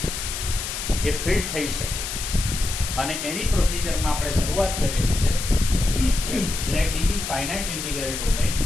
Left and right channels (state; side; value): noise; left; hiss, 5 dB below the sound